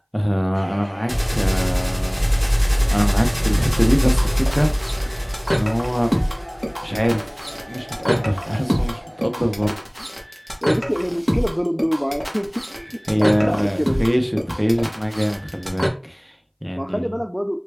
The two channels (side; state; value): both; identical; correlation 1.00